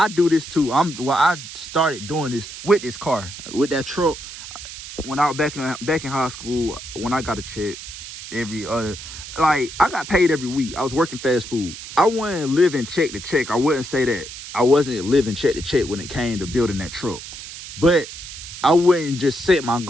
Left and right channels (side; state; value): right; noise; hiss, 12 dB below the sound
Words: do this too. I started doing this with this car, with that truck. When I was back in high school, when I got a check every other, like, I got paid every week. I was working fast food. I wasn't living check to check. I wouldn't say that. I wasn't living check to check when it came to building that truck. But I wouldn't just set my